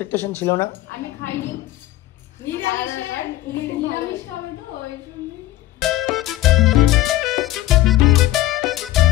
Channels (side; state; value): right; quieter; 15.4 dB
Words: ছিল না। আমি খাইনি, নিরামিষ খাবে তো ওই জন্য।